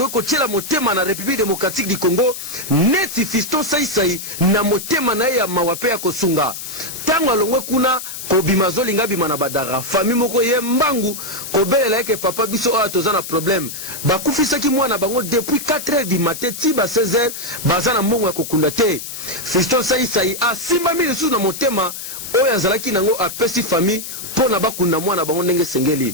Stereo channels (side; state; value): left; noise; hiss, 9 dB below the sound